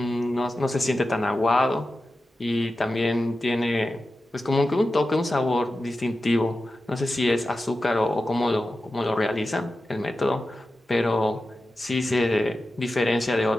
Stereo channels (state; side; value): normal; both; correlation 0.92